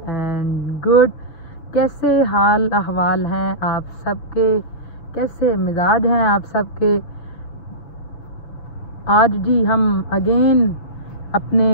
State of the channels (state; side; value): late; right; 6.6 ms